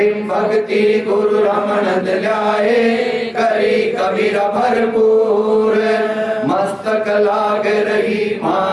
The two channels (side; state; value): both; identical; correlation 1.00